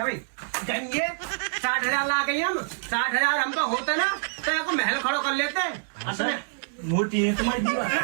जाएंगे 60,000 ला गई हम 60,000 हमको होते ना तो महल खड़ो कर लेते हैं असली मोटी है तुम्हारी दीवार।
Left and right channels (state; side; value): silent; left; digital silence